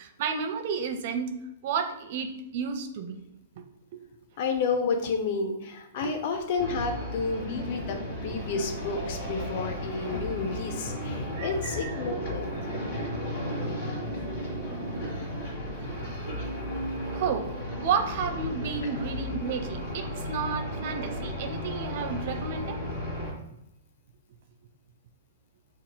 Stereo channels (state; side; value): inverted; both; correlation -0.32